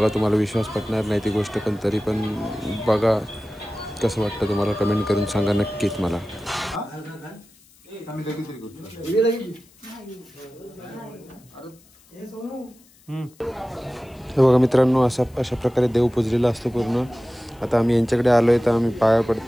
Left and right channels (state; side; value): noise; left; hiss, 29 dB below the sound